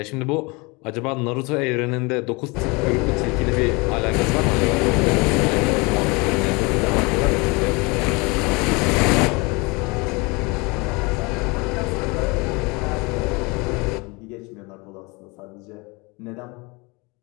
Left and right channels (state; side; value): quieter; right; 27.1 dB